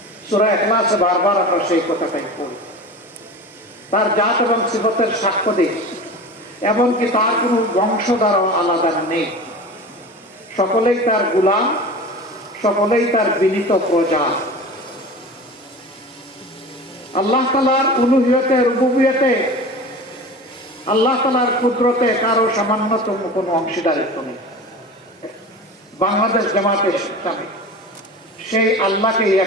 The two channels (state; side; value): normal; both; correlation 0.34